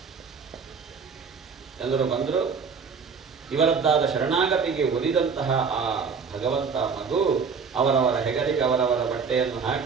ಎಲ್ಲರೂ ಬಂದರು. ಇವರದ್ದಾದ ಶರಣಾಗತಿಗೆ ಒಲಿದಂತಹ ಆ ಭಗವಂತ ಮಗು ಅವರವರ ಹೆಗಲಿಗೆ ಅವರವರ ಬಟ್ಟೆಯನ್ನು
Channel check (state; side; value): quieter; left; 5.6 dB